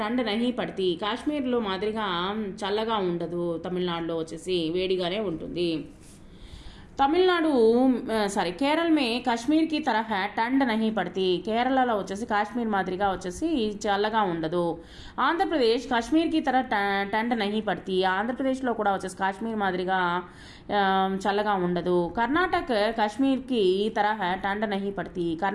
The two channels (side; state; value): both; identical; correlation 1.00